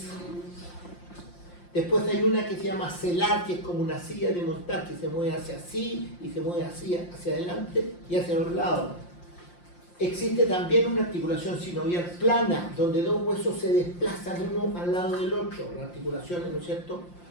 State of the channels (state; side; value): late; right; 5.7 ms